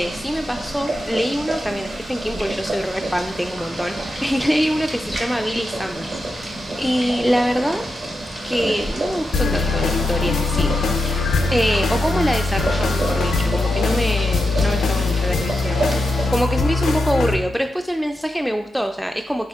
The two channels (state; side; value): normal; both; correlation 0.87